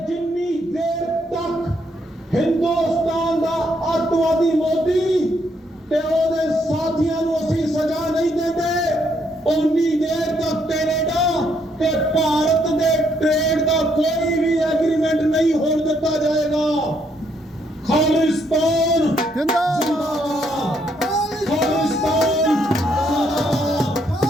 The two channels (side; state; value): both; normal; correlation 0.73